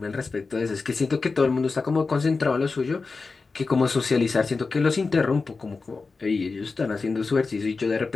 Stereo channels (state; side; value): quieter; right; 4.2 dB